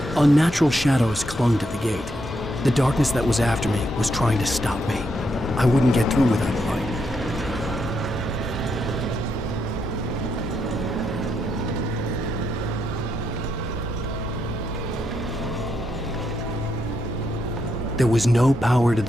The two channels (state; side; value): normal; both; correlation 0.79